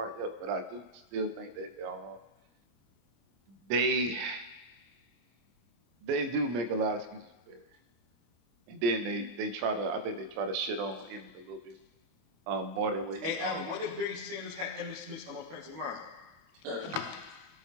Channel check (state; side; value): late; left; 25 ms